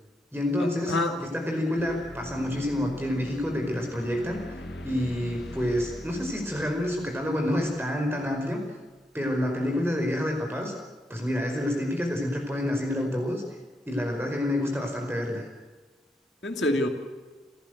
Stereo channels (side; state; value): both; normal; correlation 0.81